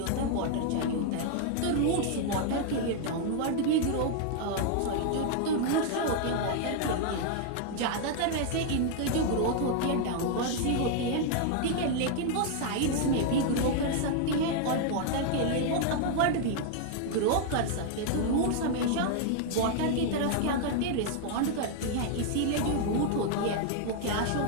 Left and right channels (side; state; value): both; different; correlation 0.00